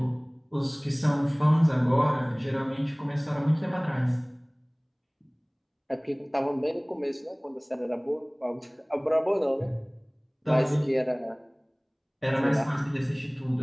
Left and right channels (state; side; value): identical; both; correlation 1.00